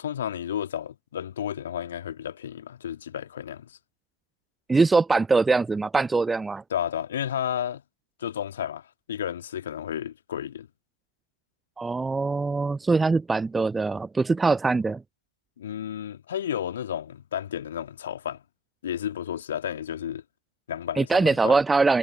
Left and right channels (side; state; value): both; normal; correlation 0.66